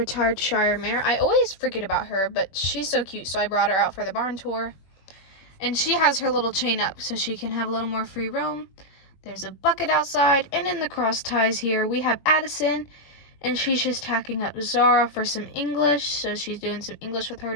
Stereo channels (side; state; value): right; late; 21 ms